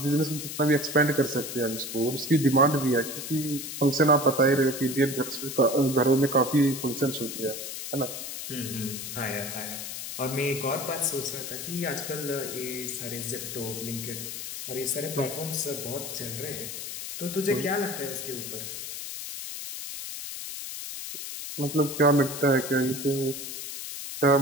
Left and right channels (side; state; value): left; noise; hiss, 7 dB below the sound